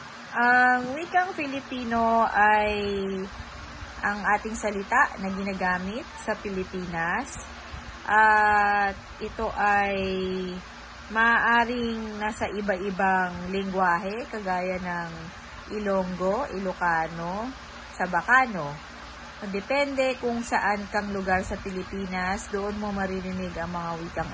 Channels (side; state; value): both; identical; correlation 1.00